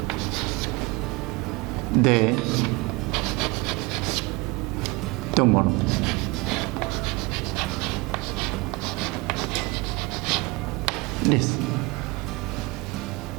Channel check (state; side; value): quieter; left; 25.2 dB